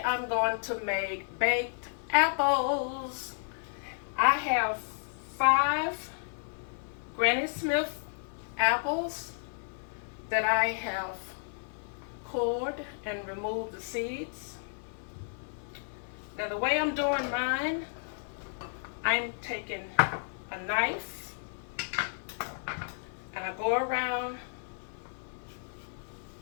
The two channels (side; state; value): right; silent; digital silence